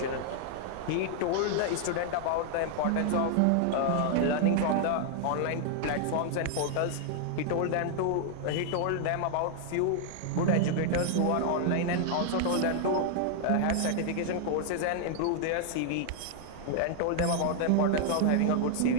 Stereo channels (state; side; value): different; both; correlation 0.00